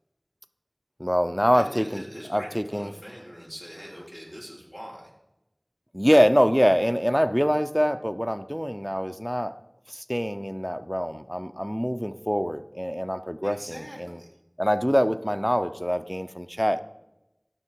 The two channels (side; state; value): both; identical; correlation 1.00